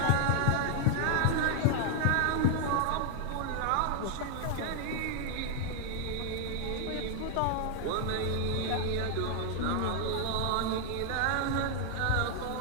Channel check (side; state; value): both; different; correlation 0.00